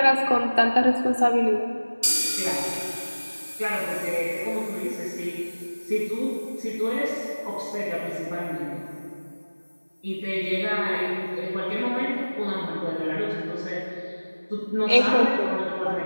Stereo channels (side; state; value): both; inverted; correlation -1.00